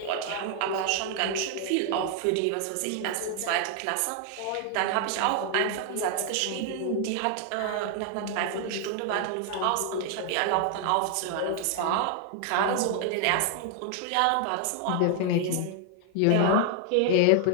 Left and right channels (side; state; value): both; different; correlation 0.00